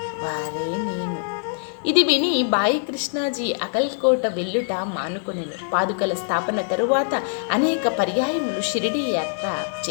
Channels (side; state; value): right; silent; 63 dB below the other